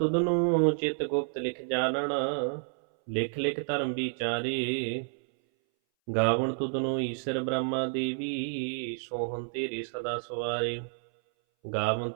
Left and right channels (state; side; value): silent; left; 58 dB below the other